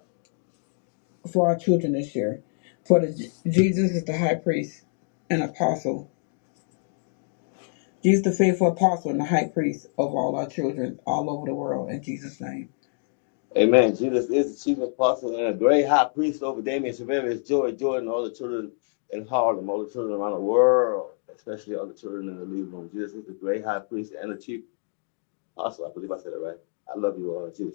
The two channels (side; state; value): right; silent; 61 dB below the other